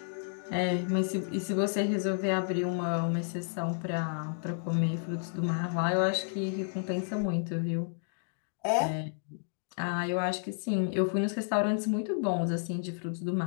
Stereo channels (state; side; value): silent; right; digital silence